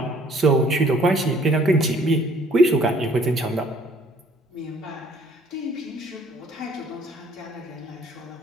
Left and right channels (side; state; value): both; normal; correlation 0.59